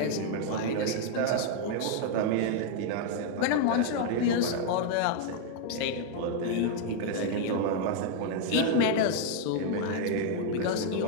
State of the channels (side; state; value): both; different; correlation 0.00